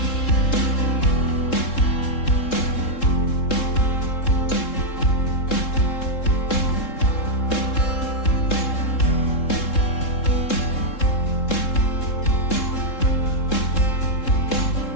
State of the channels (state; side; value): late; right; 3.7 ms